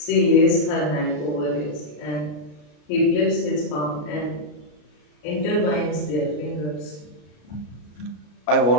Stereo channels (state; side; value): late; right; 33 ms